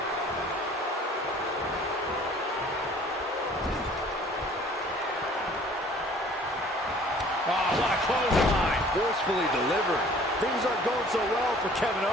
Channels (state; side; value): normal; both; correlation 0.52